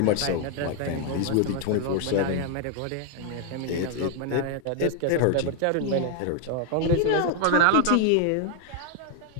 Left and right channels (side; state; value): both; different; correlation 0.00